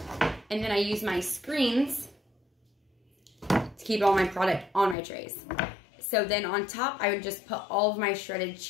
and then I use my screens to keep all my product on my trays. So then on top, I would just put all of my shredded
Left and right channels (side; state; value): right; drops out; at 5.0 s